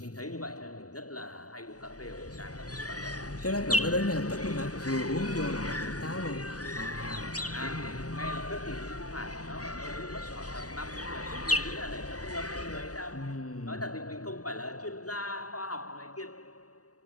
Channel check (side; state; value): right; late; 0.67 ms